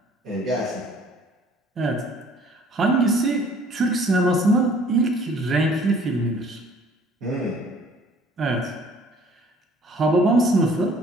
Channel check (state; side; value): normal; both; correlation 0.55